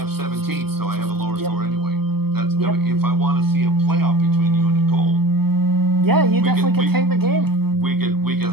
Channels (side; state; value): left; late; 0.96 ms